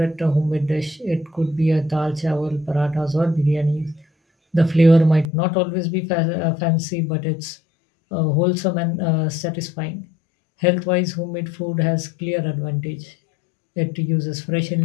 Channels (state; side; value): drops out; right; at 5.3 s